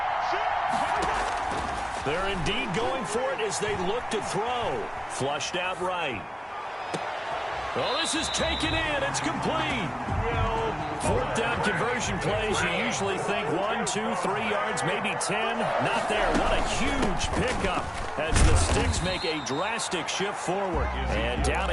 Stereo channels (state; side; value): identical; both; correlation 1.00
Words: They're indeed going for it as they look to throw. Flushed out right. Oh, this is taken in. It's complete. 4th down conversion plays, you usually think 1, 2, 3 yards, maybe 10. Not there. What a huge pickup as the Sticks make a drastic shift forward. And down